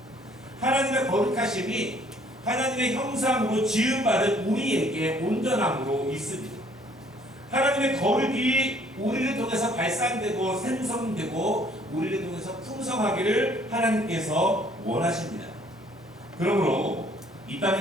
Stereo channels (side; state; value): both; normal; correlation 0.60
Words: 하나님의 거룩하심이 하나님의 형상으로 지음받은 우리에게 온전함으로 있습니다. 하나님의 거룩이 우리를 통해서 발산되고 생성되고 우리를 통해서 풍성하기를 하나님께서 원하십니다. 그러므로 이